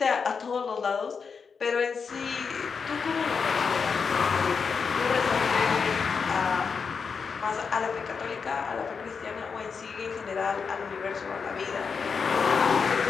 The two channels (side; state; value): right; quieter; 5.7 dB